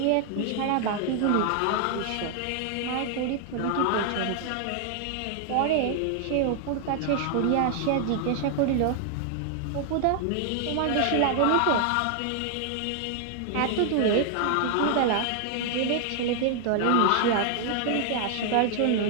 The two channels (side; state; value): both; different; correlation 0.00